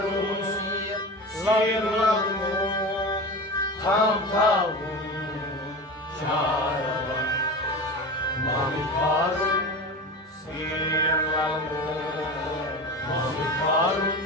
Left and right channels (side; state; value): both; normal; correlation 0.29